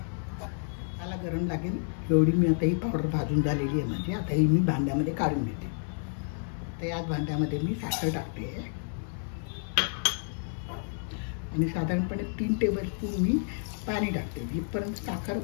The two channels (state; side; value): silent; right; 58 dB below the other